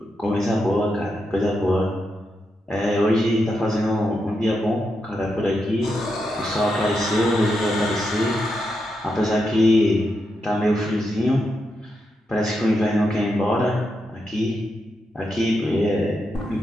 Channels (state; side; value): normal; both; correlation 0.84